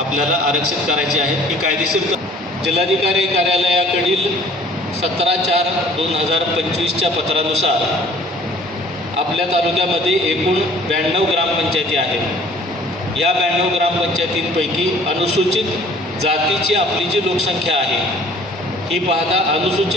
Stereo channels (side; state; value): both; normal; correlation 0.53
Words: आरक्षित करायची आहेत। ही कायदेशीर जिल्हाधिकारी कार्यालयाकडील 17/4/2025च्या पत्रानुसार आपल्या तालुक्यामध्ये एकूण 92 ग्रामपंचायती आहेत। या 92 ग्रामपंचायतींपैकी अनुसूचित जातीची आपली जी लोकसंख्या आहे ही पाहता